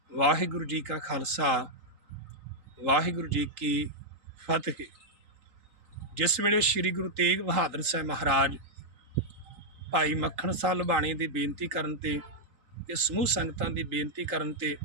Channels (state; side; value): late; left; 3.6 ms